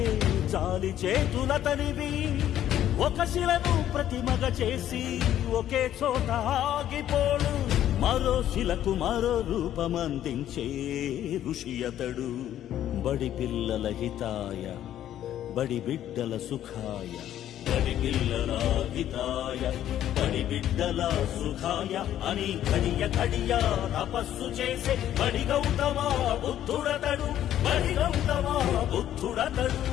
చాలి చేతులతనివి. ఒక శిలను ప్రతిమగా చేసి ఒకే చోట ఆగిపోడు, మరో శిలకు మరో రూపమందించే ఋషి అతడు. బడి పిల్లల హితాయ, బడి బిడ్డల సుఖాయ, బడి పిల్లల హితాయ, బడి బిడ్డల సుఖాయ అని కడియ కడియ తపస్సు చేసే బడి గౌతమ బుద్ధుడతడు, బడి గౌతమ బుద్ధుడతడు.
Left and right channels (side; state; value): right; quieter; 11.6 dB